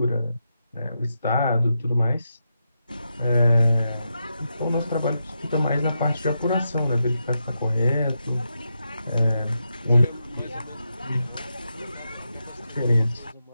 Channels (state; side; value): inverted; both; correlation -0.86